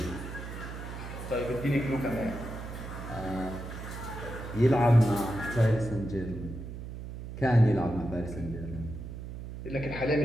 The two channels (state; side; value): noise; right; hum, 9 dB below the sound